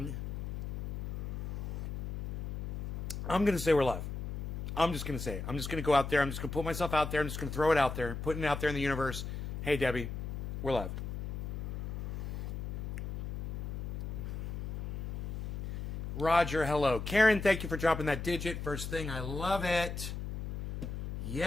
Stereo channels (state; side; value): noise; left; hum, 5 dB below the sound